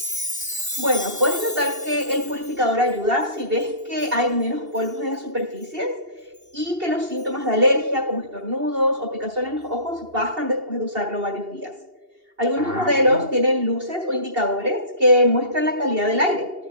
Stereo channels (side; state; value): left; late; 2.8 ms